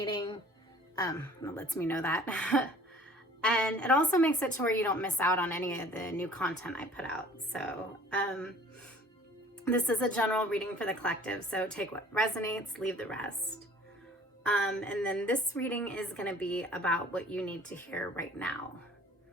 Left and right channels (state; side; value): normal; both; correlation 0.50